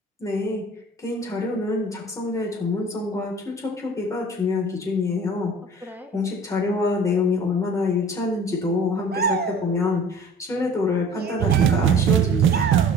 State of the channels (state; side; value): normal; both; correlation 0.46